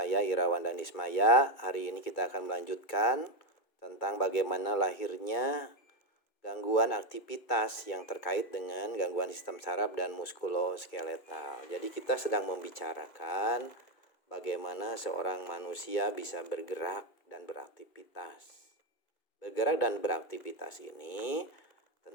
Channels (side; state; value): right; late; 2.3 ms